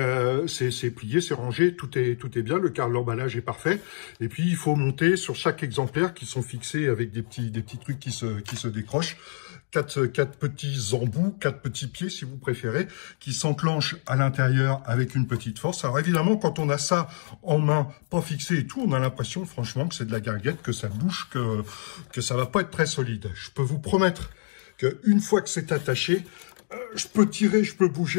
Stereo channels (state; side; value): silent; right; digital silence